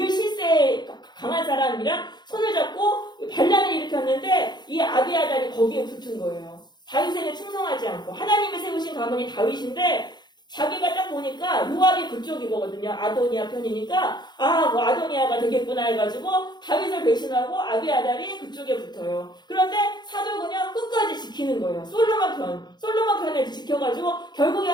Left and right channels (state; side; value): late; right; 0.21 ms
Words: 실세에 강한 사람이랑 손을 잡고 반란을 일으켰는데 이 아비아달이 거기에 붙은 거예요. 다윗에게 충성하지 않고 하나님이 세우신 가문이 다윗인데 자기가 딱 보니까 요압이 그쪽이거든요. 아도니아 편이니까 뭐 아도니아가 되겠구나 해가지고 다윗을 배신하고 아비아달이 그쪽에 붙어요. 그런데 사독은요 끝까지 지키는 거예요. 솔로몬 편에 지켜가지고